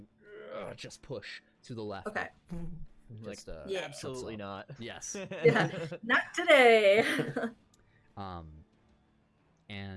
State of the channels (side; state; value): both; identical; correlation 1.00